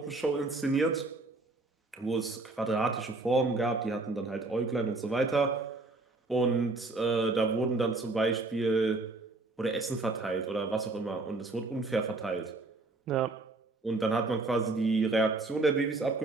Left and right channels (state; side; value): quieter; left; 3.3 dB